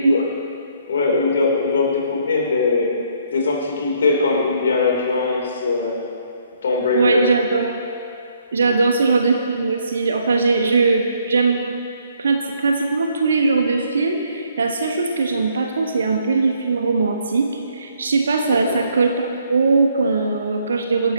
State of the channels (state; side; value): inverted; both; correlation -0.69